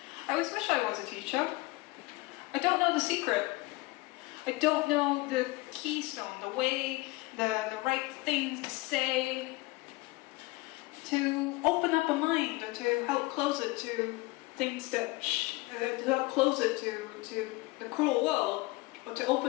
I always wish I was a teacher. I don't know the secret. I don't know the keystone, the way, the right things to say to open up a mind or to help close it to things that, to help close it to the cruel world or to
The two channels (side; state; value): right; quieter; 22.0 dB